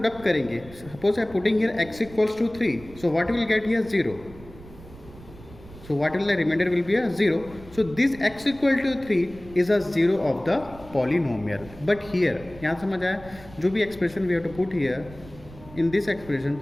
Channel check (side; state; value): right; noise; rumble, 19 dB below the sound